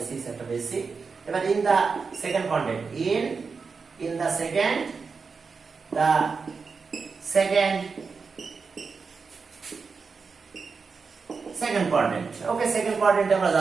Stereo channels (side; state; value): left; quieter; 5.0 dB